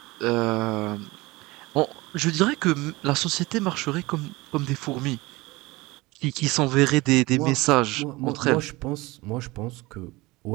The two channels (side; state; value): left; quieter; 21.8 dB